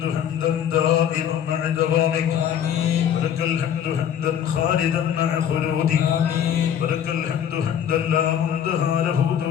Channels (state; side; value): quieter; right; 9.2 dB